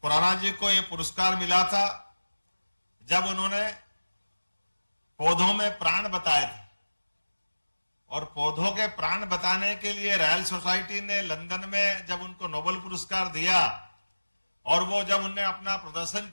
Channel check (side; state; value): both; inverted; correlation -1.00